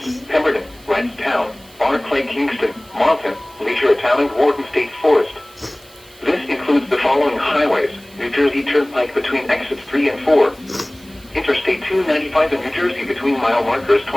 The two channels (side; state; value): right; noise; hiss, 25 dB below the sound